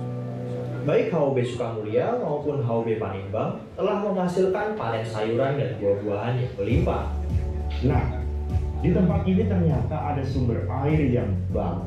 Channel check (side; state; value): both; identical; correlation 1.00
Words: Baik HOB Sukamulya maupun HOB Panimbang telah menghasilkan panen sayuran dan buah-buahan yang berlimpah. Nah, di tempat ini ternyata ada sumber air yang